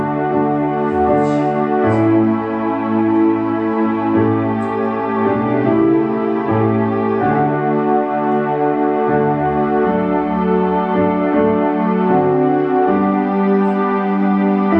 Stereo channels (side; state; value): both; identical; correlation 1.00